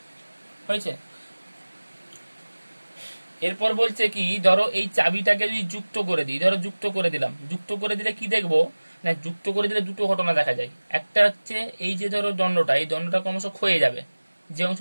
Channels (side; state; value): both; inverted; correlation -1.00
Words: হয়েছে? এরপর বলছে কি, ধরো এই চাবিটাকে যদি যুক্ত করে দিই, ধরো যুক্ত করে দিলাম, যুক্ত করে দিলে কি দেখবো না, যুক্ত করে দিলে দুটো ঘটনা দেখা যায়। একটা হচ্ছে এই যে ধরো দণ্ডটা, এই দণ্ডটা ক্রমশ ক্ষয়ে যাবে, যে